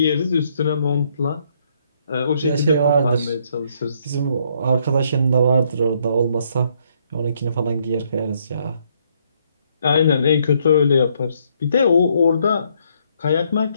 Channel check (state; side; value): inverted; both; correlation -0.70